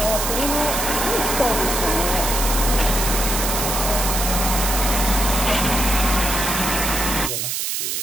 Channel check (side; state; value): right; noise; hiss, 1 dB below the sound